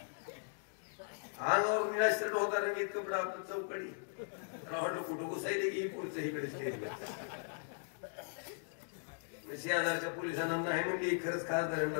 अंगावर निराश्रट होता रंगीत कपडा आपण चौकडी वाटलं कुठं घुसायले की पुढचं इकडे स्टेजला. शेजारच्या पोलिसांना नाही म्हणली खरंच खासदारांना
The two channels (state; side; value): silent; right; digital silence